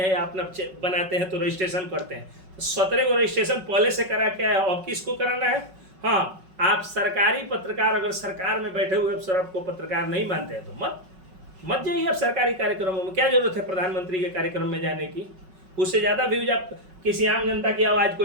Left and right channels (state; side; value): late; left; 5.4 ms